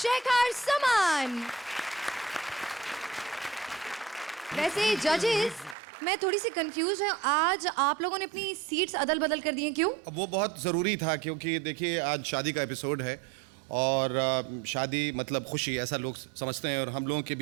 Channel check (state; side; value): drops out; left; at 5.8 s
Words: Shekhar Saman. वैसे जजेस, मैं थोड़ी सी confuse हूँ। आज आप लोगों ने अपनी सीट्स अदल बदल कर दी हैं, क्यों? वो बहुत ज़रूरी था क्योंकि देखिए आज शादी का एपिसोड है और शादी मतलब खुशी ऐसा लोग समझते हैं और हम लोगों के